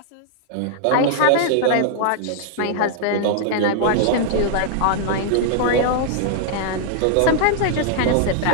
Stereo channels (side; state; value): both; different; correlation -0.01